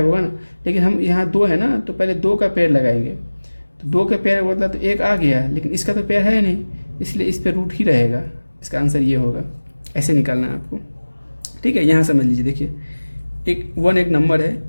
होगा ना। लेकिन हम यहाँ 2 है ना, तो पहले 2 का पेड़ लगाएंगे। तो 2 के पेड़ बदला तो 1 आ गया, लेकिन इसका तो पेड़ है नहीं, इसलिए इस पर रूट ही रहेगा। इसका आंसर ये होगा। ऐसे निकालना है आपको। ठीक है। यहाँ समझ लीजिए। देखिए, एक 1 एक नंबर है,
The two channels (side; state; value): both; inverted; correlation -1.00